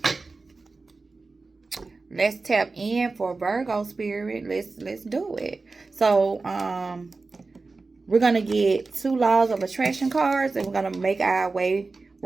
Let's tap in for Virgo spirit. Let's do it. So, we're gonna get 2 laws of attraction cards, and we're gonna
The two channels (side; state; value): left; quieter; 3.8 dB